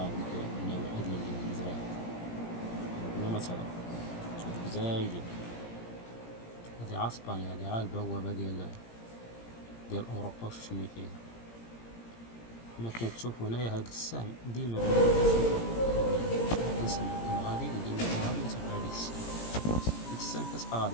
وديك النواحي ديال الجزائر بلا مثال. هادوك زايدين، هادي عا إسبانيا، هادي عا البوابة ديال أوروبا وشنو فيها. كما كتشوفو هنايا هاد السهم ديما كيسمى غادي ديما غادي تبع هاديك السهم، ديك السهم كتبقى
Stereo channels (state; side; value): late; right; 17 ms